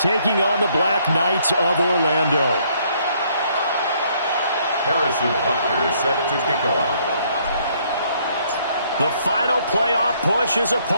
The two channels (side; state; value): both; inverted; correlation -0.67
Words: on the Black Knights of Orlando. Harrison Butker is set to kick off. The final playoff push is